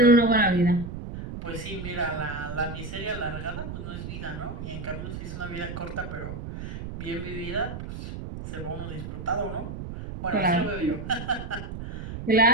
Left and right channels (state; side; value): noise; right; rumble, 8 dB below the sound